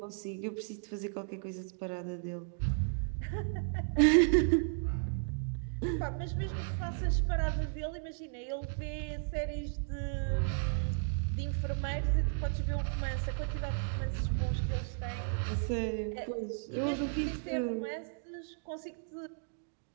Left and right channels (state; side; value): silent; left; digital silence